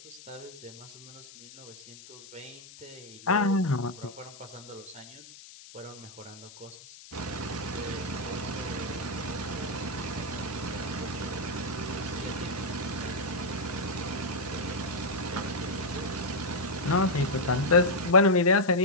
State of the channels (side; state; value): left; noise; hiss, 18 dB below the sound